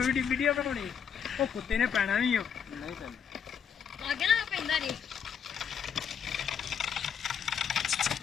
ਵੀਡੀਓ ਬਣਾਉਣੀ ਉਹ ਕੁੱਤੇ ਨੇ ਪੈਣਾ ਵੀ ਨਹੀਂ ਪੈਂਦਾ ਅੱਗੇ ਨਾ ਪੈਂਦਾ ਜੀ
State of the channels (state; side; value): quieter; right; 7.6 dB